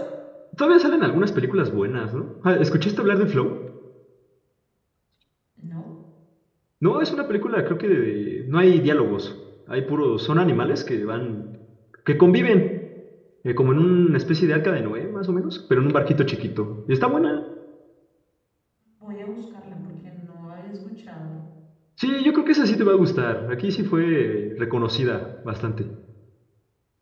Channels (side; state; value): both; identical; correlation 1.00